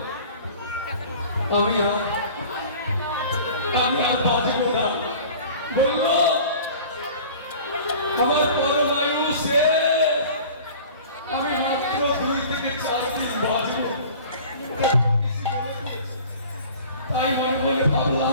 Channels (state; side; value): inverted; both; correlation -0.43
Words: আমি আর বাঁচব না। বললো আমার পরমায়ু শেষ, আমি মাত্র 2 থেকে 4 দিন বাঁচব। তাই মনে মনে